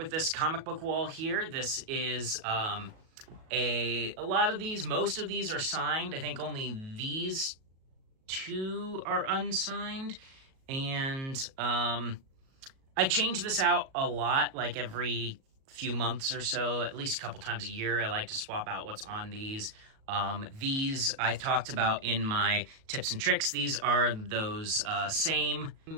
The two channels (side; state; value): left; late; 37 ms